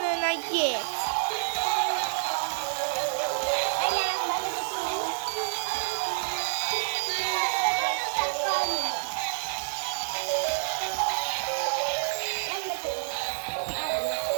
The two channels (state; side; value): silent; left; digital silence